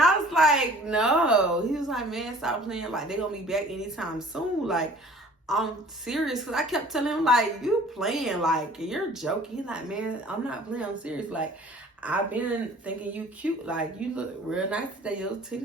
I was like, no. He was like, man, stop playing. Like, they gonna be back anytime soon. Like, I'm serious. Because I kept telling him, like, you playing. Like, you're joking. He's like, man, I'm not playing. I'm serious. Like, I've been thinking you cute. Like, you look real nice today. Your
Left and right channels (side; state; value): both; normal; correlation 0.50